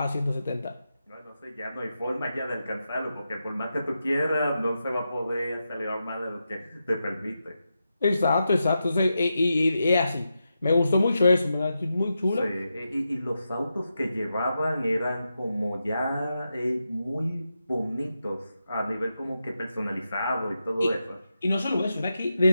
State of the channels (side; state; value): both; inverted; correlation -0.88